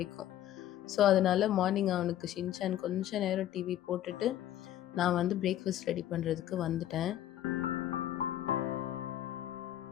ஸோ அதனால மார்னிங் அவனுக்கு ஷின்சான் கொஞ்சம் நேரம் டிவி போட்டுட்டு நான் வந்து பிரேக்ஃபாஸ்ட் ரெடி பண்ணுறதுக்கு வந்துட்டேன்.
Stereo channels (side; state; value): right; quieter; 12.3 dB